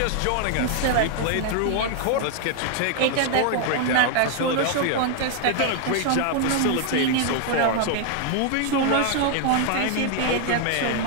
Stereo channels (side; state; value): both; different; correlation 0.00